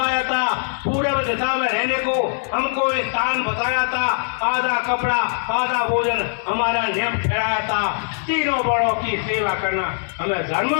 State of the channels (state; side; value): silent; right; digital silence